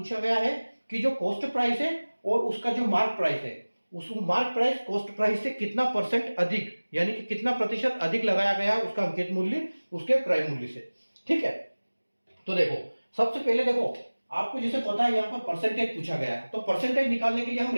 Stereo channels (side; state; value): both; inverted; correlation -1.00